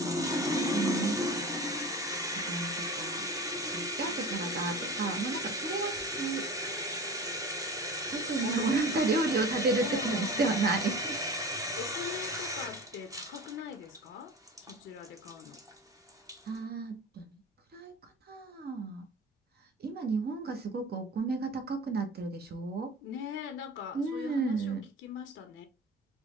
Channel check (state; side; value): normal; both; correlation 0.34